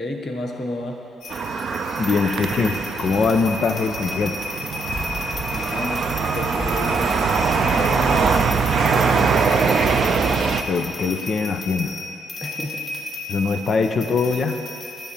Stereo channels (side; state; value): both; normal; correlation 0.74